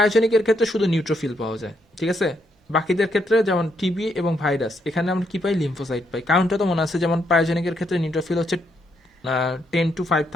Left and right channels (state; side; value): normal; both; correlation 0.76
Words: ক্ষেত্রে শুধু নিউট্রোফিল পাওয়া যায়, ঠিক আছে। বাকিদের ক্ষেত্রে যেমন টিবি এবং ভাইরাস, এখানে আমরা কি পাই, লিম্ফোসাইট পাই। কারণটা তো মনে আছে, যেমন পায়োজেনিকের ক্ষেত্রে নিউট্রোফিল হচ্ছে 10 to